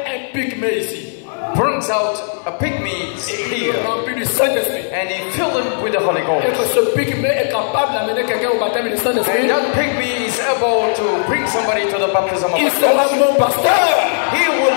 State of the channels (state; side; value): silent; right; digital silence